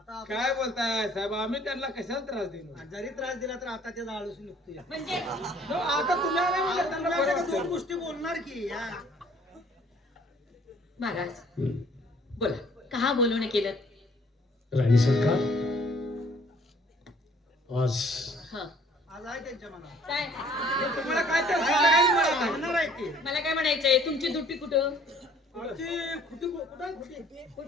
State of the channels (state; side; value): normal; both; correlation 0.58